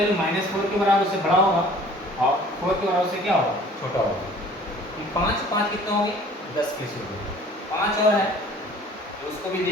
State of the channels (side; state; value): both; normal; correlation 0.50